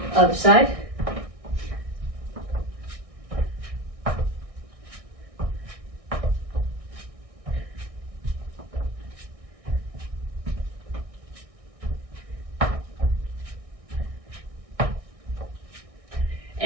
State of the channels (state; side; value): late; left; 1.6 ms